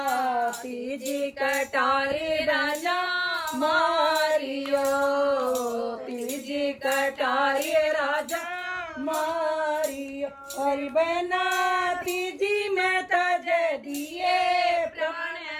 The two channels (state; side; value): identical; both; correlation 1.00